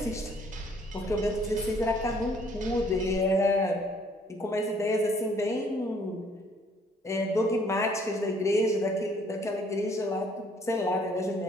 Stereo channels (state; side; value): normal; both; correlation 0.62